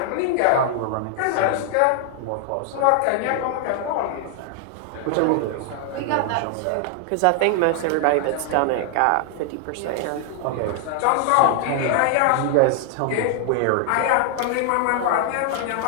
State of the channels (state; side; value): different; both; correlation 0.00